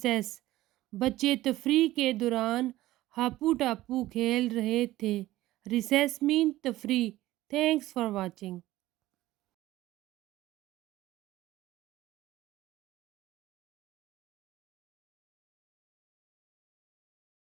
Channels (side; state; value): left; quieter; 16.1 dB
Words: بچے تفریح کے دوران ہاپو ٹاپو کھیل رہے تھے. ریسیس مین تفریح. تھینکس فار واچنگ.